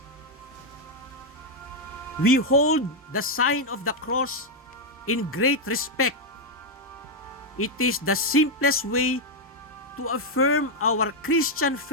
We hold the sign of the cross in great respect. It is the simplest way to affirm our Christian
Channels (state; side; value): normal; both; correlation 0.00